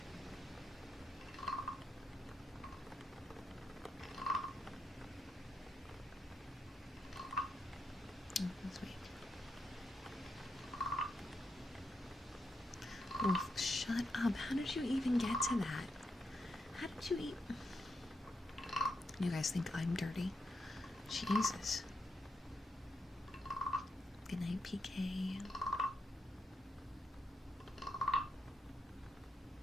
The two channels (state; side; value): normal; both; correlation 0.82